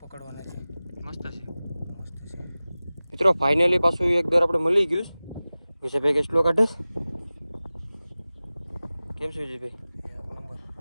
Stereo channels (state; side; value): inverted; both; correlation -0.97